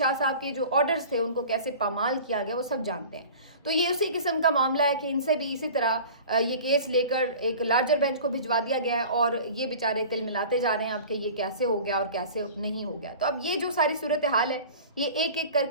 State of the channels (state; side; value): inverted; both; correlation -0.41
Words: صاحب کے جو آرڈرز تھے ان کو کیسے پامال کیا گیا وہ سب جانتے ہیں. تو یہ اسی قسم کا معاملہ ہے کہ ان سے بھی اسی طرح یہ کیس لے کر ایک لارجر بینچ کو بھجوا دیا گیا ہے اور یہ بیچارے تل ملاتے جا رہے ہیں اب کہ یہ کیسے ہو گیا اور کیسے نہیں ہو گیا. تو اب یہ جو ساری صورتحال ہے یہ ایک ایک کر